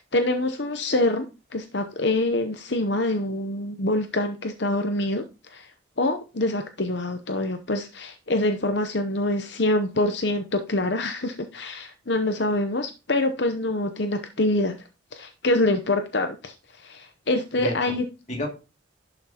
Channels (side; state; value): both; normal; correlation 0.10